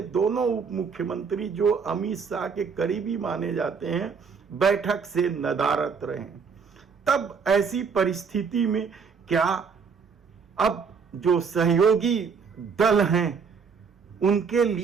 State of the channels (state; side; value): quieter; left; 5.8 dB